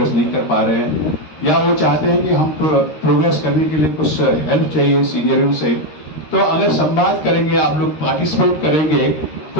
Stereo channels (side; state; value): right; late; 13 ms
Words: नहीं कर पा रहे हैं या वो चाहते हैं कि हम प्रोग्रेस करने के लिए कुछ हेल्प चाहिए सीनियरों से, तो अगर संवाद करेंगे, आप लोग पार्टिसिपेट करेंगे